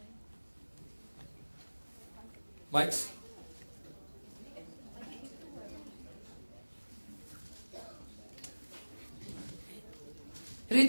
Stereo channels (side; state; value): both; inverted; correlation -1.00